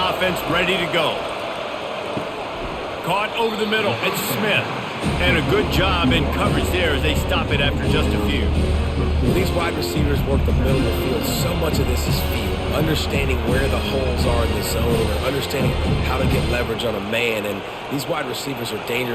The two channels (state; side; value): identical; both; correlation 1.00